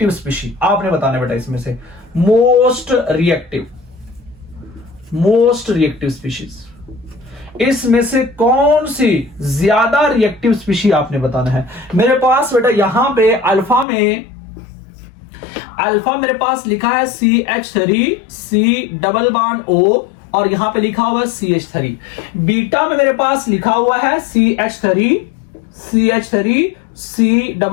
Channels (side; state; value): right; drops out; at 13.9 s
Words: species. आपने बताना बेटा इसमें से मोस्ट रिएक्टिव स्पीशीज, इसमें से कौन सी ज्यादा रिएक्टिव स्पीशी आपने बताना है। मेरे पास बेटा यहां पे अल्फा मेरे पास लिखा है CH3 C double bond O और यहां पे लिखा हुआ है CH3। बीटा में मेरे पास लिखा हुआ है CH3 C